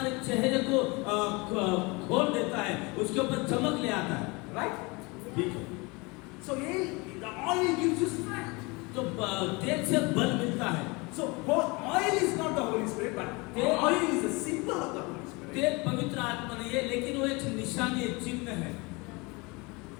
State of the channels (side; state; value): right; quieter; 26.6 dB